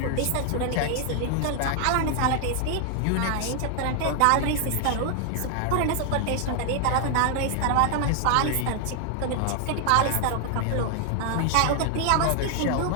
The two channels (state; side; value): different; both; correlation 0.00